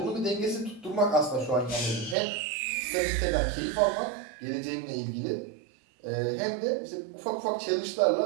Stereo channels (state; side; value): drops out; left; at 2.1 s